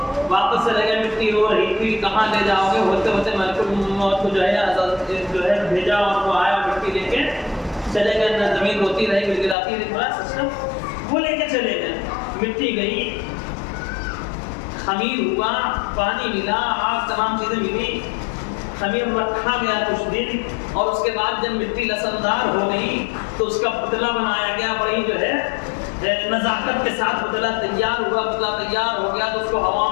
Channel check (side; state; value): right; drops out; at 9.6 s